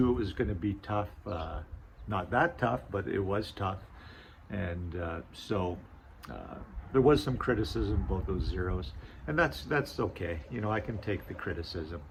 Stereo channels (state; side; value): identical; both; correlation 1.00